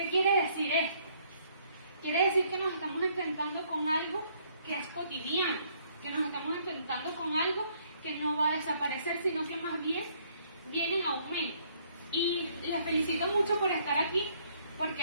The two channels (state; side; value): inverted; both; correlation -0.66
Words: quiere decir esto? Quiere decir que nos estamos enfrentando con algo que es cotidiano, que nos estamos enfrentando con algo que no va a desaparecer, sino que más bien viene en aumento. Y les felicito mucho por estar aquí,